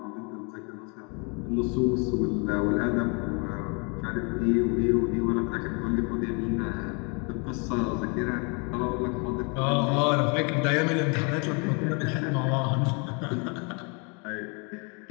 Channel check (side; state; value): right; quieter; 34.1 dB